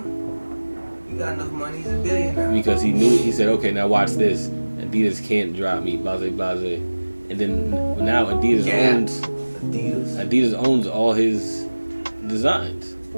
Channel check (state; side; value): inverted; both; correlation -1.00